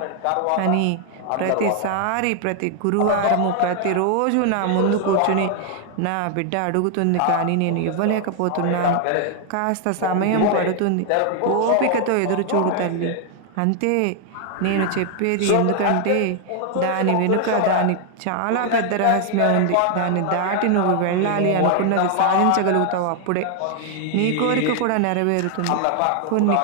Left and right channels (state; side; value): different; both; correlation 0.00